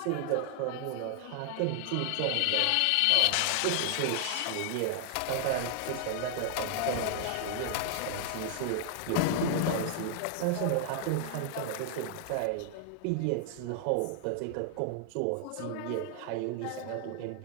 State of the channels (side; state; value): both; different; correlation 0.00